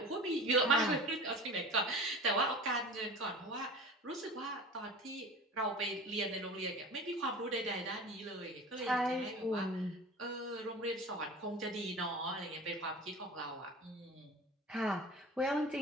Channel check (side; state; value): both; normal; correlation 0.37